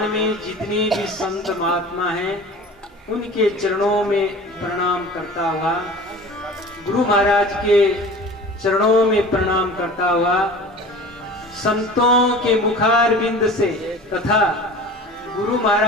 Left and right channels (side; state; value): both; normal; correlation 0.39